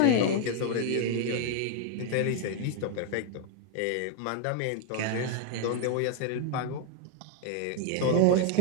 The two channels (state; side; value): different; both; correlation 0.00